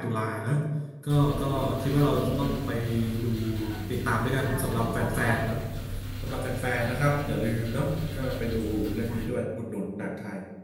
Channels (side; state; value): both; identical; correlation 1.00